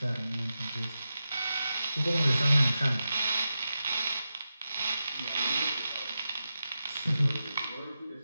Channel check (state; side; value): inverted; both; correlation -0.90